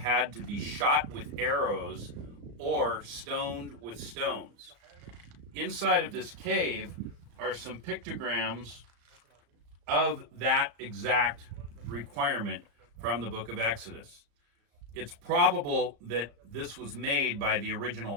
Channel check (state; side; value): late; left; 34 ms